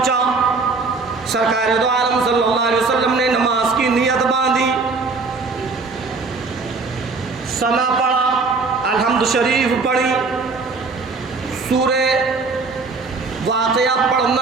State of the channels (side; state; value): left; quieter; 4.2 dB